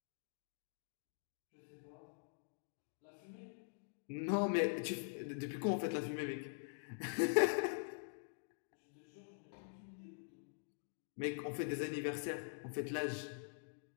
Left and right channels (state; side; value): silent; right; digital silence